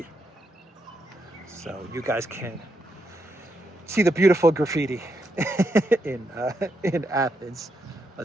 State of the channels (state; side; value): normal; both; correlation 0.81